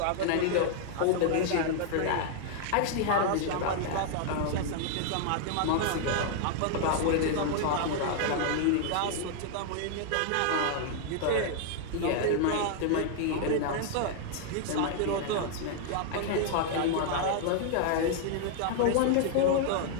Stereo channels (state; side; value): different; both; correlation 0.00